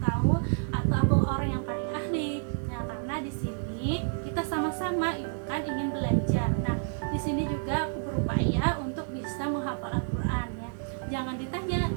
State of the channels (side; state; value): left; silent; digital silence